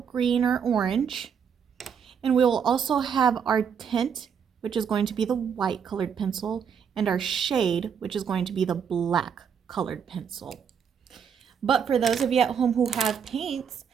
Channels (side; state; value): left; quieter; 7.3 dB